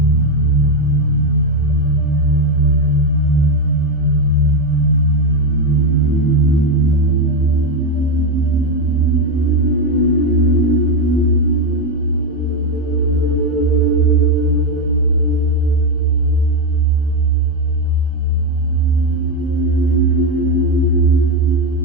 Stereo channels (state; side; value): normal; both; correlation 0.08